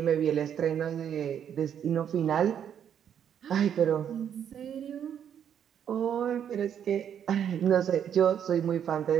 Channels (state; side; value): quieter; left; 8.9 dB